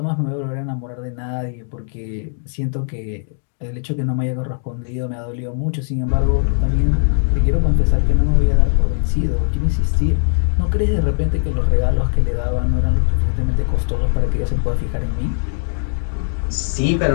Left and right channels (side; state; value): right; silent; digital silence